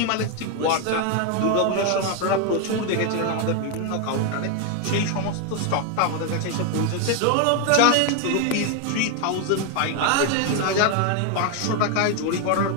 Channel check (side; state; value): both; different; correlation 0.01